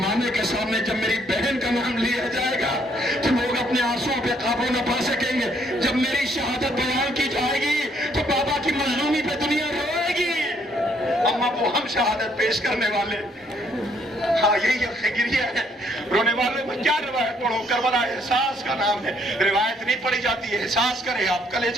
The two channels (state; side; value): normal; both; correlation 0.68